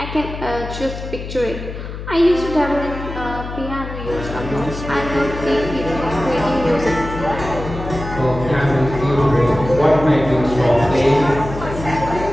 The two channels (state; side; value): noise; left; hum, 9 dB below the sound